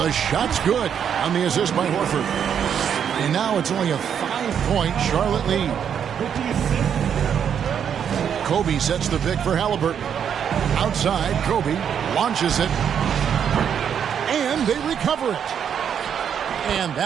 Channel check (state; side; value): quieter; left; 8.2 dB